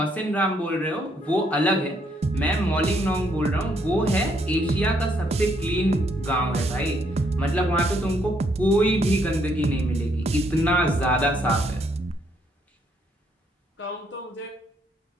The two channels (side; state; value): both; normal; correlation 0.71